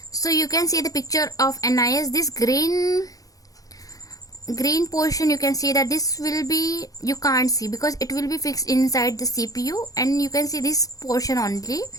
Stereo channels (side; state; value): right; late; 0.17 ms